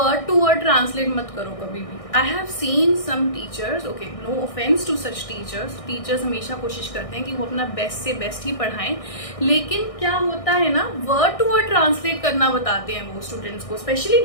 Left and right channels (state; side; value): late; right; 1.6 ms